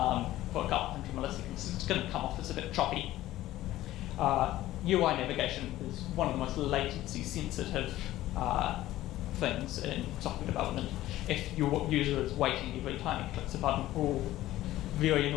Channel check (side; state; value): right; quieter; 15.2 dB